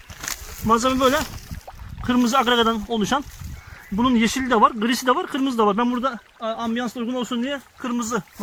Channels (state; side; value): identical; both; correlation 1.00